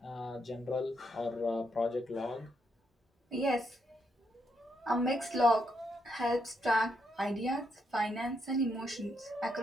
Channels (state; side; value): normal; both; correlation 0.78